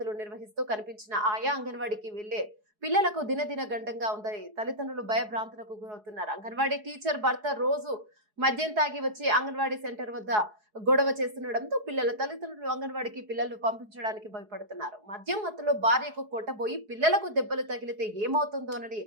నిర్వహిస్తూ కనిపించిన ఆయా అంగన్వాడీకి వెళ్లే పిల్లలకు దినదిన గండంగా ఉందని తల్లిదండ్రులు భయభ్రాంతులకు గురవుతున్నారు. అంగన్వాడీ టీచర్ భర్త రోజు మద్యం తాగి వచ్చి అంగన్వాడీ సెంటర్ వద్ద గొడవ చేస్తుండటంతో పిల్లల తల్లిదండ్రులు అంగన్వాడీకి పిల్లలు పంపించడానికి భయపడుతున్నారు. మద్యం మత్తులో భార్యకు కొట్టబోయి పిల్లలకు దెబ్బలు తగిలితే ఏమవుతుందోనని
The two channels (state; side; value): late; left; 4.7 ms